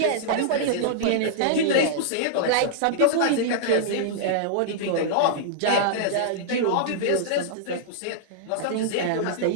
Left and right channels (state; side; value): different; both; correlation -0.02